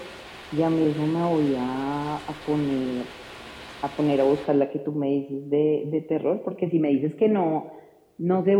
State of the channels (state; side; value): identical; both; correlation 1.00